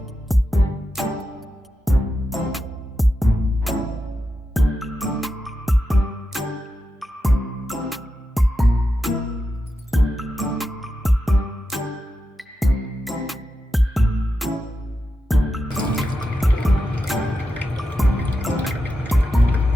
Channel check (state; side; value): normal; both; correlation 0.89